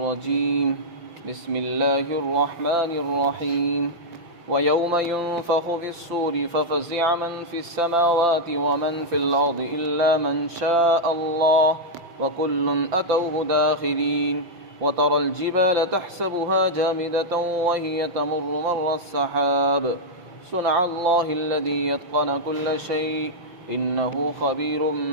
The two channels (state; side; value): late; left; 5.9 ms